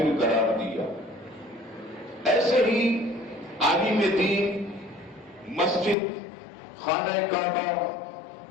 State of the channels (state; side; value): drops out; right; at 6.0 s